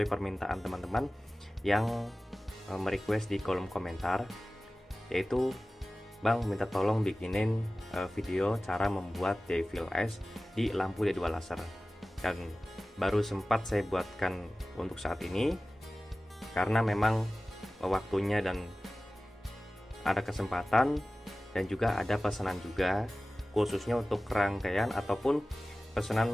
permintaan teman-teman yang merequest di kolom komentar, yaitu Bang minta tolong bikinin video cara membuat Devil Eyes di lampu D2 laser. Dan baru sempat saya buatkan untuk saat ini karena memang waktunya dan ada kesempatan, dan juga ada pesanan juga khususnya untuk rangkaian ataupun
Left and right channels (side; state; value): both; normal; correlation 0.97